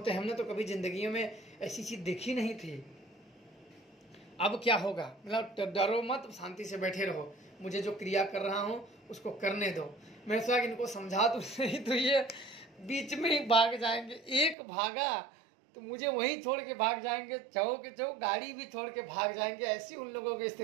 हैं, हमने तो कभी जिंदगी में ऐसी चीज देखी नहीं थी। अब क्या होगा, मतलब डरो मत, शांति से बैठे रहो। मुझे जो क्रिया कर रहा हूँ उसको करने दो। मैं सोचा कि इनको समझा तो सही, तो ये बीच में ही भाग जाएंगे। एक भागा तो मुझे वहीं छोड़ के भाग जाएंगे, चौक गाड़ी भी छोड़ के भाग जाएंगे, ऐसी उन लोगों की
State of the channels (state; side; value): drops out; left; at 14.6 s